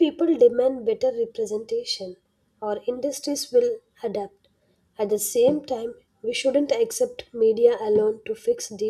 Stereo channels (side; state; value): both; identical; correlation 1.00